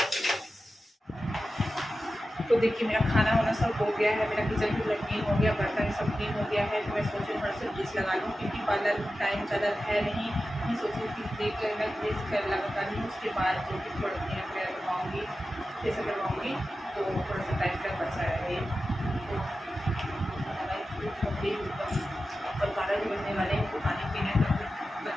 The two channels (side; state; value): both; normal; correlation 0.93